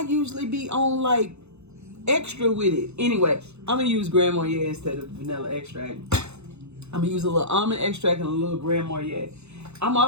be on like extra with it. Anyway, I'm gonna use Grand Marnier instead of vanilla extract. I'm gonna use a little almond extract and a little Grand Marnier. I'm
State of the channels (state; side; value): late; left; 0.81 ms